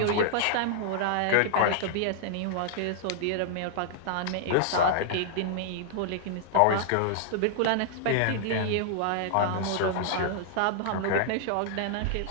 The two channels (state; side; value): different; both; correlation -0.01